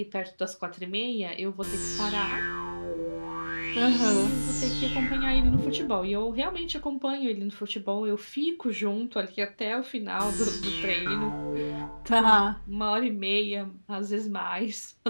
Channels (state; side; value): inverted; both; correlation -1.00